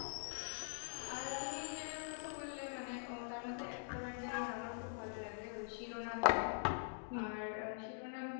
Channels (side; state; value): right; silent; digital silence